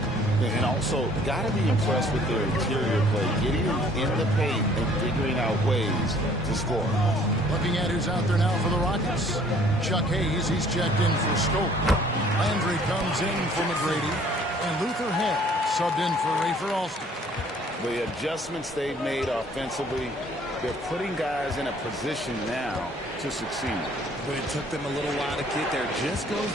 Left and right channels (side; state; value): both; normal; correlation 0.57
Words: And also, got to be impressed with their interior play, getting in the paint and figuring out ways to score. Looking at who's out there now for the Rockets. Chuck Hayes, he's checked in for Scope. Landry comes in for McGrady. And Luther Head subbed in for Rafer Alston. The adjustments they've made offensively, they're putting guys in a position now to succeed. But it took them a little while to get there. Just goes